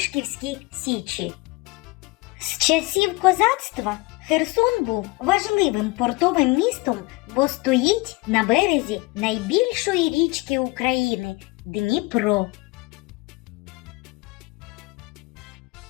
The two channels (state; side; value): quieter; right; 24.3 dB